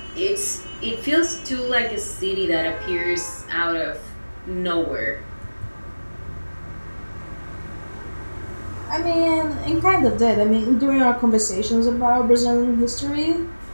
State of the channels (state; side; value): inverted; both; correlation -1.00